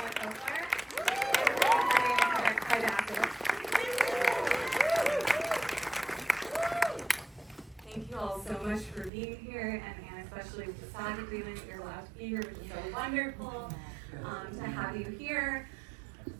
Thank you all so much for being here, and especially with the SAG agreement that you're allowed to be here, which is so wonderful to have you here.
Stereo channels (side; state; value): left; drops out; at 9.1 s